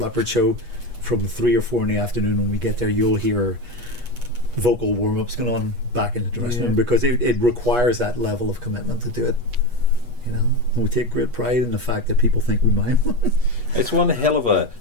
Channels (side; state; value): left; late; 8.3 ms